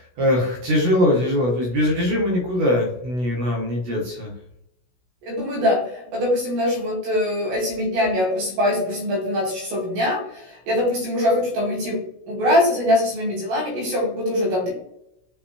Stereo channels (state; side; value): late; left; 16 ms